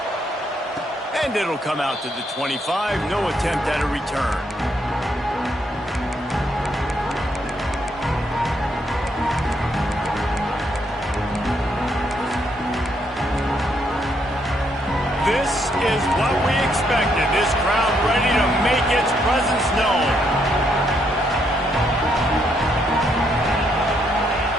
And it'll come out to the 25, no attempt at a return. This is what we expected. This crowd ready to make its presence known.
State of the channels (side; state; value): both; normal; correlation 0.74